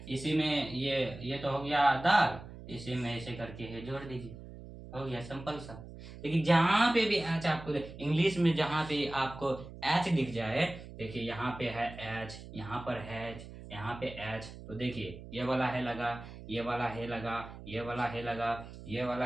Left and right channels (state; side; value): noise; right; hum, 14 dB below the sound